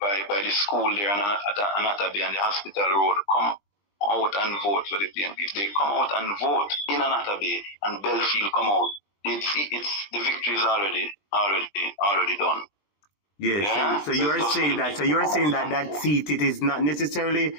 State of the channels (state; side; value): late; right; 20 ms